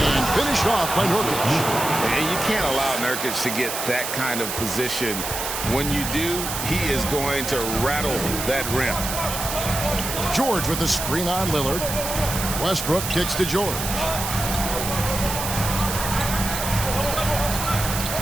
And finished off by Nurkic. And you can't allow Nurkic to get that kind of position. When you do, he is going to rattle that rim. George with the screen on Lillard. Westbrook kicks to George.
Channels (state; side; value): noise; right; hiss, 4 dB below the sound